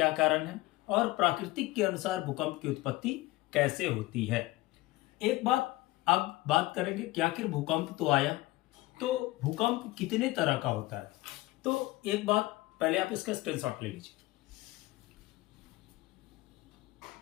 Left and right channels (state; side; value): quieter; right; 19.3 dB